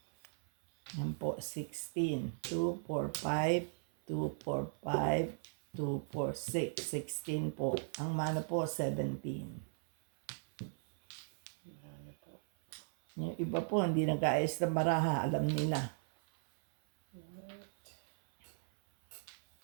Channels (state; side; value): silent; left; 53 dB below the other